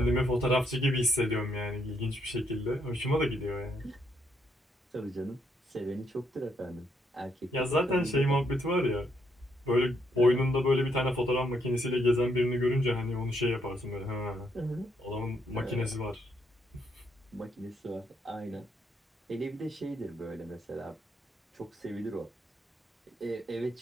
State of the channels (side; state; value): both; normal; correlation 0.74